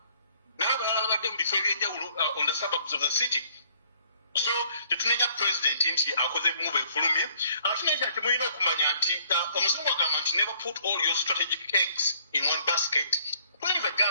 N'abalala babadde mu bifo eby'enjawulo on the suburbs of the city. So tetunenya president nti akoze move efulumye. Tunenya nti mulina okumanya nti omuzungu agamba nti never put all your strategic eggs in one basket. Kwani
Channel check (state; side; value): inverted; both; correlation -0.62